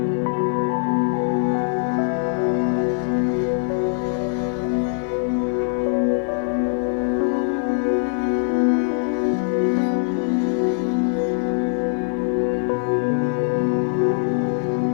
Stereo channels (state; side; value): silent; right; digital silence